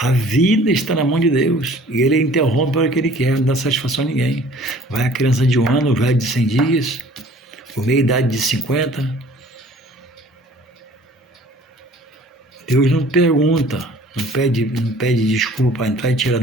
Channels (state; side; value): normal; both; correlation 0.51